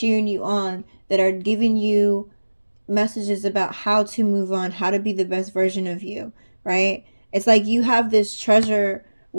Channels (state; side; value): inverted; both; correlation -1.00